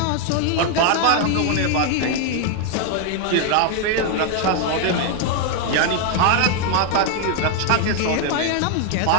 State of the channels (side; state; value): both; different; correlation 0.01